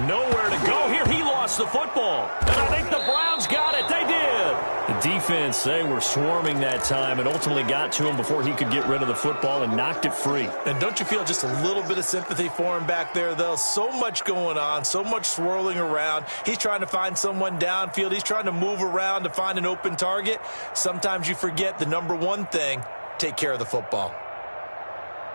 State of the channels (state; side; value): inverted; both; correlation -1.00